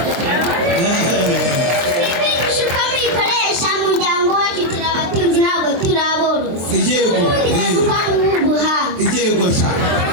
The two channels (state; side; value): late; left; 23 ms